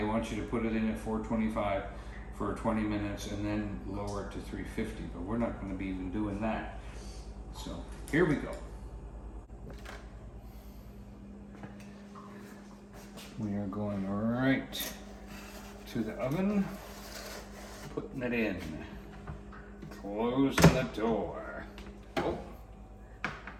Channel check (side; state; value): both; identical; correlation 1.00